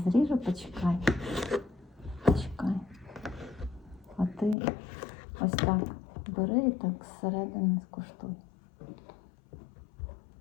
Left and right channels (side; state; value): right; drops out; at 4.5 s